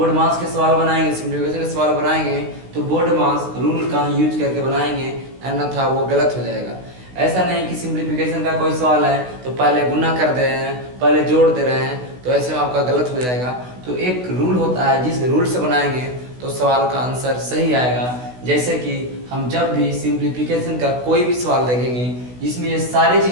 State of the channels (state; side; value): late; left; 16 ms